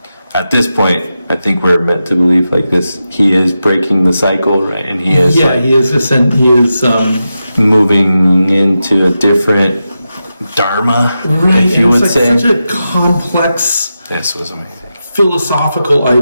at this point, I think we're meant to believe like this. He is breaking the cycle, right? And he is. Yeah, he is. He is moving into a different dharma, if you would say. Such a complex. This was amazing. Philosophical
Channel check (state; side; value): inverted; both; correlation -0.90